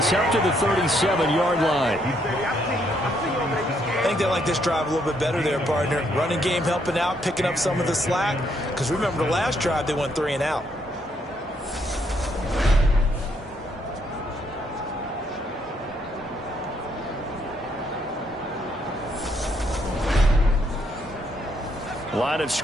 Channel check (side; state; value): both; normal; correlation 0.72